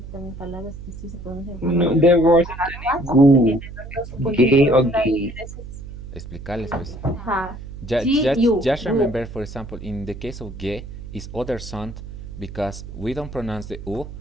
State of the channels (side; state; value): right; noise; hum, 12 dB below the sound